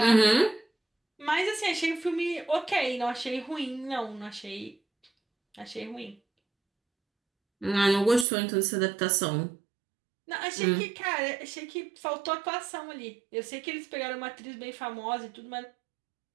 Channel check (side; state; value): left; drops out; at 8.2 s